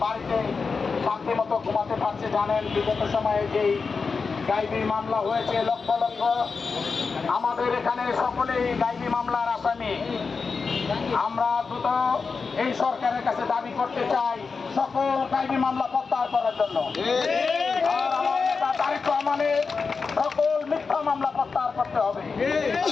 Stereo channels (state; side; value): quieter; right; 4.9 dB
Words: বাড়িতে শান্তি মতো ঘুমাতে পারছে। জানেন বিগত সময়ে যেই গাইবি মামলা হয়েছে লক্ষ লক্ষ, আমাদের এখানে সকলেই গাইবি মামলার আসামি। আমরা দ্রুত এই সরকারের কাছে দাবি করতে চাই সকল গাইবি মামলা প্রত্যাহার করার জন্য। আর আমার নেতা তারেক রহমানের সকল মিথ্যা মামলা প্রত্যাহার করতে হবে।